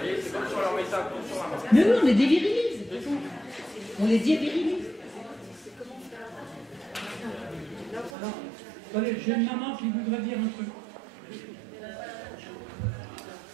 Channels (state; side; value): drops out; left; at 8.1 s